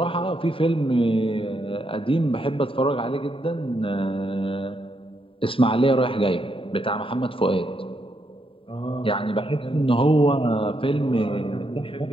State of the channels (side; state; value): right; late; 0.26 ms